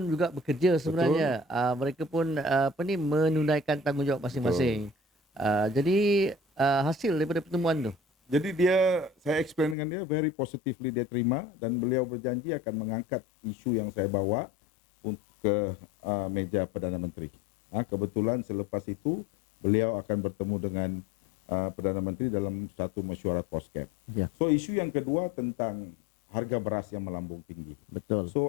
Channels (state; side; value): drops out; right; at 9.8 s